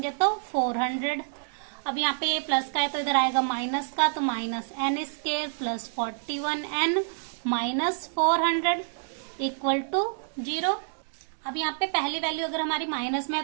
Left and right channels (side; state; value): left; silent; digital silence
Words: तो 400। अब यहाँ पे ये प्लस का है तो इधर आएगा माइनस का, तो -n² plus 41n minus 400 equal to 0। अब यहाँ पे पहली वैल्यू अगर हमारी माइनस में है